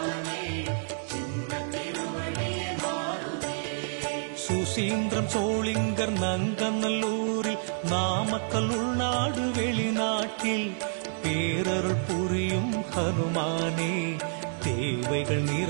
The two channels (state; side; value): silent; left; digital silence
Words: சுசீந்திரம் சோளிங்கர் நங்கநல்லூரில் நாமக்கல் உள்நாடு வெளிநாட்டில் பேரருள் புரியும் ஹனுமானே தேவைகள்